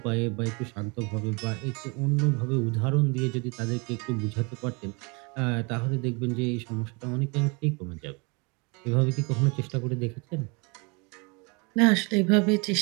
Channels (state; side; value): quieter; left; 30.2 dB